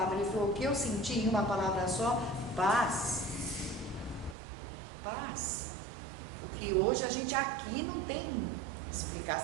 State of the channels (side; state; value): left; drops out; at 4.4 s